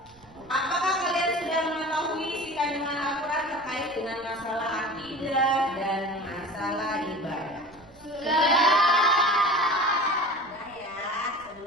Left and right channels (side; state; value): right; noise; rumble, 26 dB below the sound